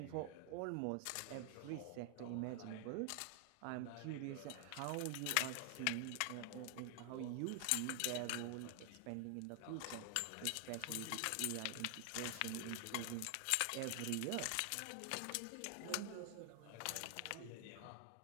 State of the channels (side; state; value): both; different; correlation 0.00